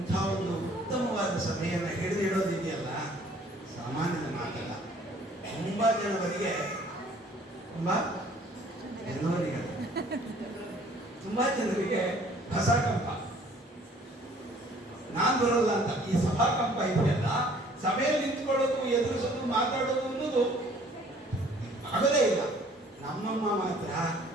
ಒಂದು ಉತ್ತಮವಾದ ಸಭೆಯನ್ನು ಹಿಡಿದಿಡೋದಿದೆಯಲ್ಲ, ಸಾಮಾನ್ಯದ ಮಾತಲ್ಲ. ತುಂಬಾ ಜನರಿಗೆ ತುಂಬಾ ಜನರಿಗೆ ಹೊಸಕಂಪ, ನಾನ್ ಬರೋಲ್ಲ ಅಂತ. ಈ ಸಭಾಕಂಪ ಇದೆಯಲ್ಲ, ಸಭೆಯಲ್ಲಿ ನಿಂತ್ಕೊಳ್ಳೋದು, ಎದುರಿಸೋದು, ಮಾತಾಡೋದು ಅನ್ನೋದು ಆಗಲೇ ಇಲ್ಲ. ನಮ್ಮಮ್ಮ ಮಾತ್ರ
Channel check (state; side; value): normal; both; correlation 0.56